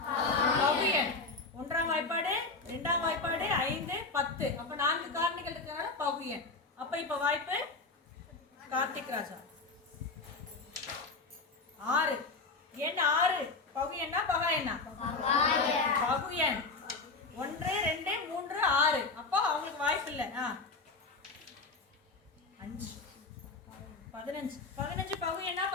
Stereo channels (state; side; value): quieter; right; 3.7 dB